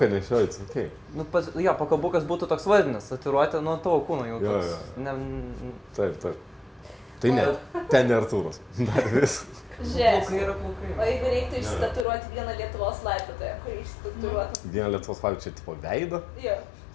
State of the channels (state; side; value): drops out; right; at 12.1 s